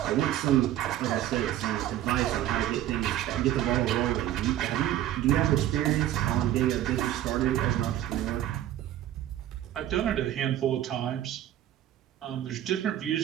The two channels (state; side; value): quieter; left; 12.5 dB